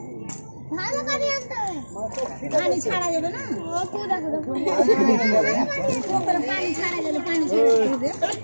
ভালো পানি আনতে হবে, পানি ছাড়া যাবে না। ও তো দেখো দেখো পানি ছাড়া যাবে, পানি ছাড়া যাবে।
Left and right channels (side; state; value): both; inverted; correlation -1.00